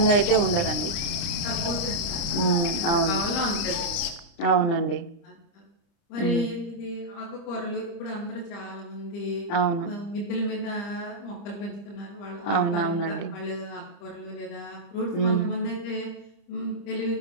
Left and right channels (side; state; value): right; late; 30 ms